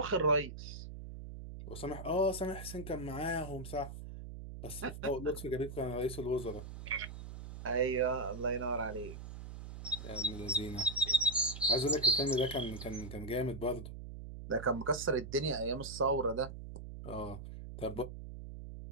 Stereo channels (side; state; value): right; noise; hum, 10 dB below the sound